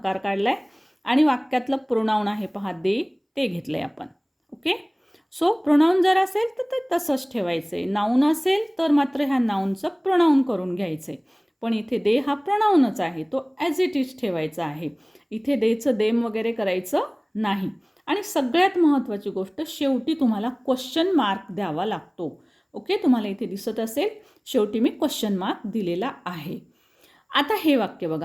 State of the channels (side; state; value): both; identical; correlation 1.00